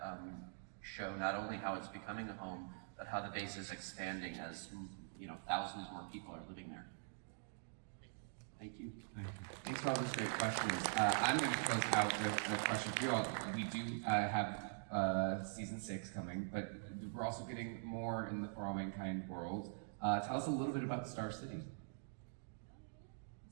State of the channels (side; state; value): left; silent; digital silence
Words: show not only how it's becoming a home, but how the base is expanding as thousands more people are living there. Thank you. Thanks for all those great questions. I'm going to close out with a question for you all. We do have season 6 coming, but we're also getting more in the For All Mankind world. Tell us a little bit about Star City.